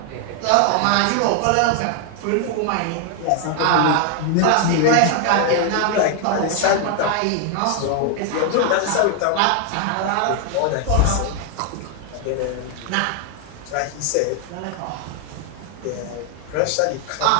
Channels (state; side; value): different; both; correlation 0.00